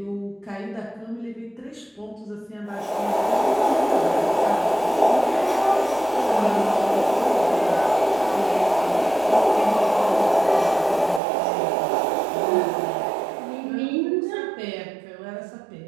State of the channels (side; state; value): left; drops out; at 11.2 s